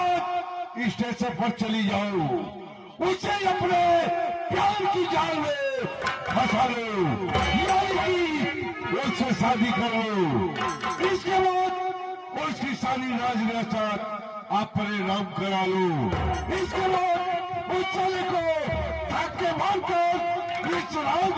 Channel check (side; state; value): both; identical; correlation 1.00